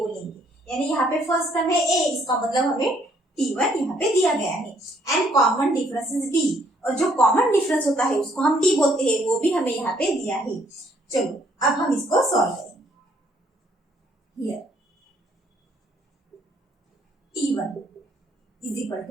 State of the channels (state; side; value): normal; both; correlation 0.66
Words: यानी यहाँ पे फर्स्ट टर्म है A, इसका मतलब हमें T1 यहाँ पे दिया गया है। And common difference is D, और जो कॉमन डिफरेंस होता है उसको हम D बोलते हैं, वो भी हमें यहाँ पे दिया है। चलो अब हम इसको सॉल्व करेंगे। Here T1 is equal